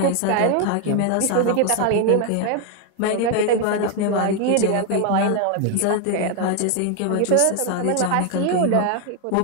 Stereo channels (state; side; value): different; both; correlation 0.00